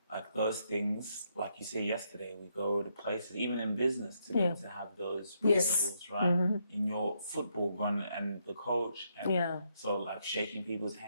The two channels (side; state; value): both; inverted; correlation -0.76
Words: like those things. Like you say yesterday, we go to places, even in business, to be able to have those principles, right? In your football run and the coach, and so like shaking people's